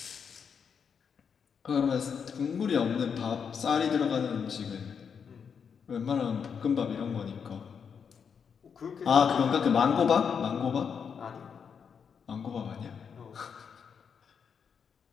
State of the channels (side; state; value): right; quieter; 6.7 dB